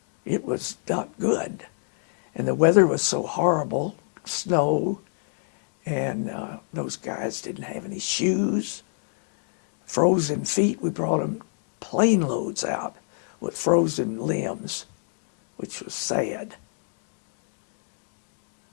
It was not good. And the weather was so horrible, snow, and those guys didn't have any shoes, frozen feet. We brought them plane loads out with frozen limbs, which was sad.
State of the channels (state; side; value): silent; right; 60 dB below the other